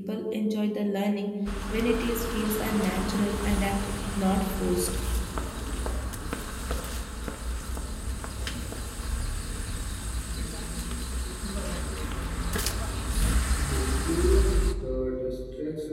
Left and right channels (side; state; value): both; identical; correlation 1.00